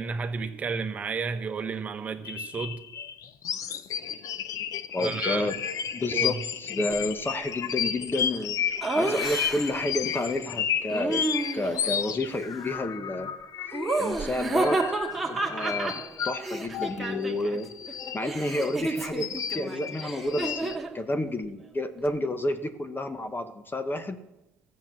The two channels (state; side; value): normal; both; correlation 0.56